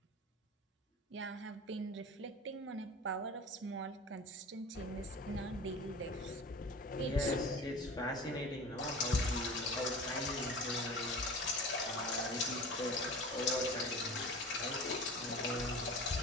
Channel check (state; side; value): normal; both; correlation 0.36